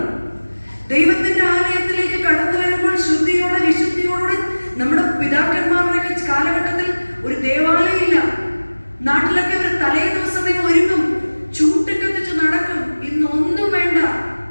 ദൈവത്തിന്റെ ആലയത്തിലേക്ക് കടന്നു വരുമ്പോൾ ശുദ്ധിയോടെ വിശുദ്ധിയോടെ നമ്മുടെ പിതാക്കന്മാരുടെ കാലഘട്ടത്തിൽ ഒരു ദേവാലയം ഇല്ല. നാട്ടിലൊക്കെ അവർ തലേ ദിവസമേ ഒരുങ്ങും, ചൂട്ടിക്കത്തിച്ച് നടക്കും. ഇന്നൊന്നും വേണ്ട,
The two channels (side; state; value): both; inverted; correlation -1.00